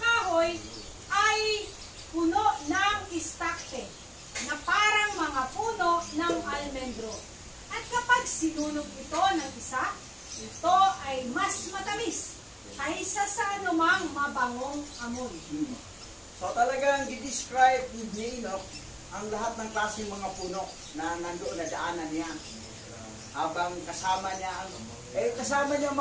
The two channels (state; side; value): identical; both; correlation 1.00